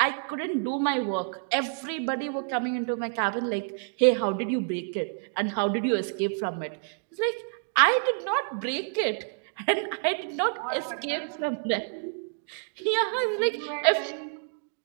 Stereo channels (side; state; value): left; silent; digital silence